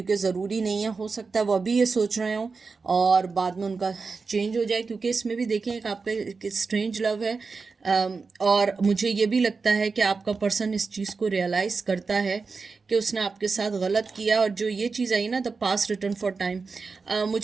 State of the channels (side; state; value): left; quieter; 4.6 dB